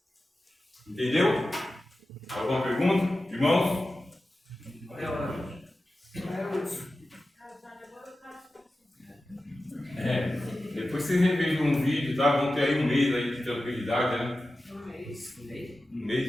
Entendeu? Alguma pergunta? Irmãos? Depois vocês revejam um vídeo, tá? Vão ter aí um mês aí de tranquilidade, né? Um mês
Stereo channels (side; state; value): both; normal; correlation 0.94